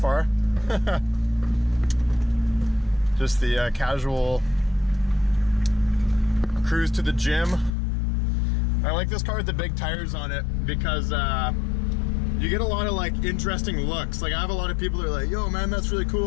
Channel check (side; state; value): right; drops out; at 7.7 s